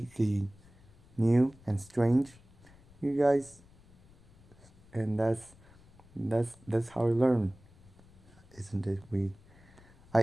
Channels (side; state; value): left; noise; rumble, 26 dB below the sound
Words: new and strange, you guys, and that's how we learn, isn't it?